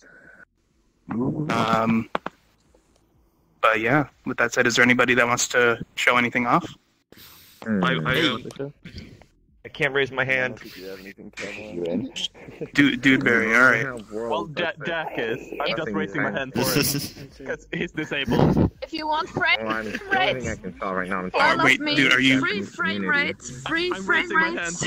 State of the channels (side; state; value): both; identical; correlation 1.00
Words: But yeah, with that said, is there anybody that wants to show anything off? I can't raise my hand. Dudeberry, alright. Well, Jack is. I'm just raising my hand for him. Because he's disabled. If you want frame rates, Wait, dude, are you... free frame rates, free frame rates.